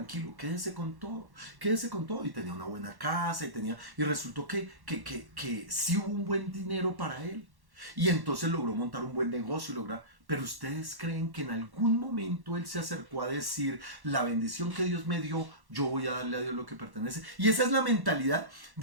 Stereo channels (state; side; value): late; left; 1.1 ms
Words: quédese con todo y tenía una buena casa y resultó que sí hubo un buen dinero para él y entonces logró montar un buen negocio pero ustedes creen que en algún momento él se acercó a decir la bendición que Dios me dio, yo voy a darle a Dios lo que pertenece. Y esa es la mentalidad